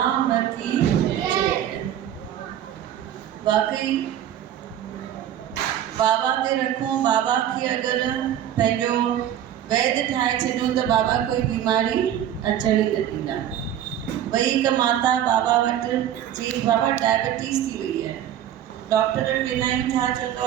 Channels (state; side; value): quieter; left; 10.9 dB